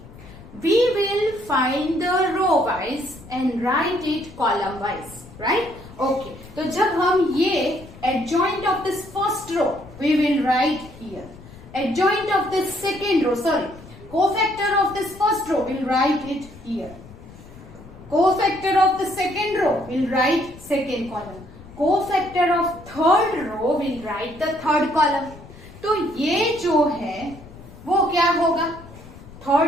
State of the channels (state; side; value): noise; left; rumble, 19 dB below the sound